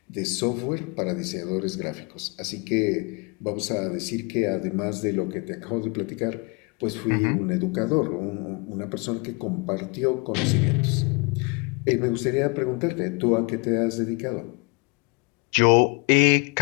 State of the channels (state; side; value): quieter; right; 30.3 dB